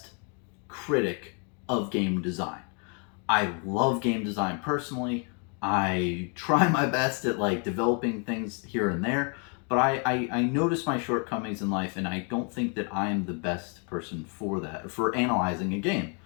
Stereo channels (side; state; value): right; quieter; 38.1 dB